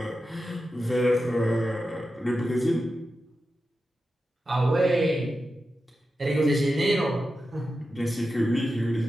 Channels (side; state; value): both; normal; correlation 0.91